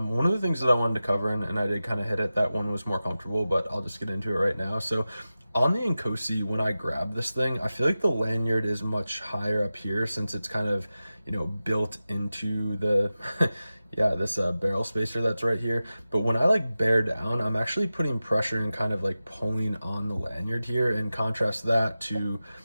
of the things that I wanted to cover, and I did kind of hit it, that one was more comfortable, but I'll just get into it right now. So on the Inkosi, when I grab this thing, I feel like the lanyard is much higher up here, since it's kind of, built into the this barrel spacer that's right here. But when I like bear down, I'm actually putting pressure and kind of like pulling on the lanyard here, and contrast that to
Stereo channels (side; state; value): both; inverted; correlation -0.94